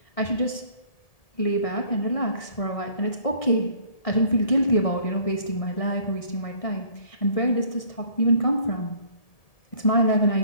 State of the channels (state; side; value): late; right; 1.7 ms